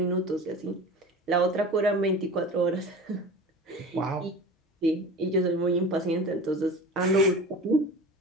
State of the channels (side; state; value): both; normal; correlation 0.35